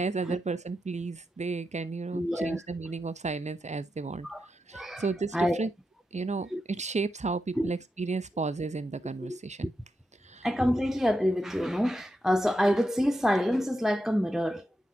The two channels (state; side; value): normal; both; correlation 0.86